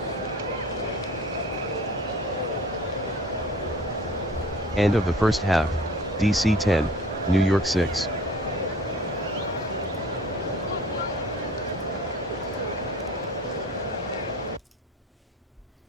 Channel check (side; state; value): both; normal; correlation 0.46